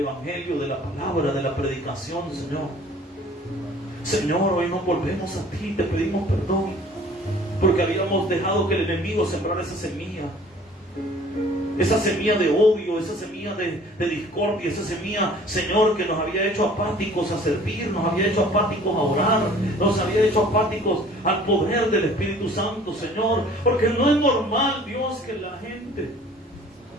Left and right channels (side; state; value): both; normal; correlation 0.51